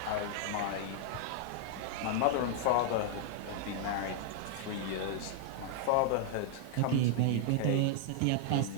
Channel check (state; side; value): different; both; correlation 0.00